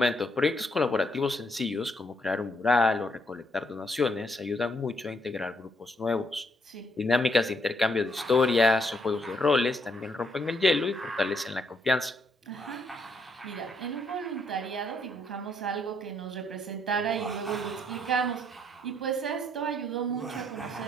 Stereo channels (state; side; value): normal; both; correlation 0.73